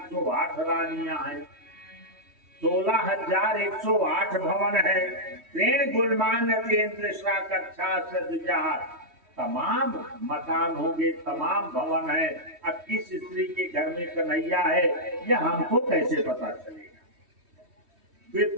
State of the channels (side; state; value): left; late; 3.2 ms